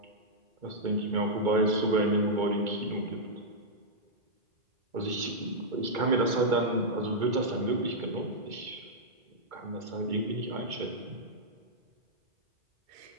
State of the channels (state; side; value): late; left; 2.3 ms